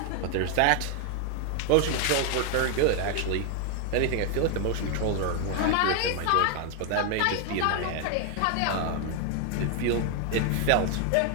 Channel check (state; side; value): different; both; correlation 0.00